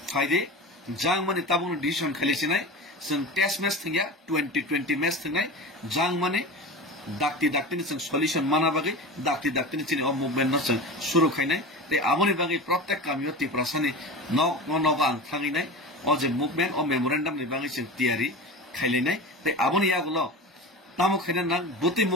phaide jang mani tabung decision khalisi nai sung test match thingya 2020 match thingai jang mani dakti ni sung solution mana bagai dakti ni chini o movement no sung shuru khainai te amoni bagai prottek kamio Tripura sani no ang thangi nai o je movement o memorandum ni bagai sung tiari khaili nai te amoni yagulo tamo khainan nang buti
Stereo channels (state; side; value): normal; both; correlation 0.30